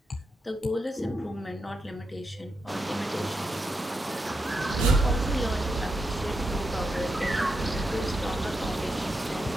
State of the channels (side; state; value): both; normal; correlation 0.85